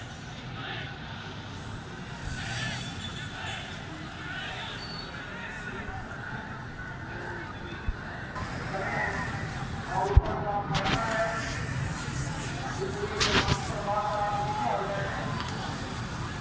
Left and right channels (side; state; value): both; identical; correlation 1.00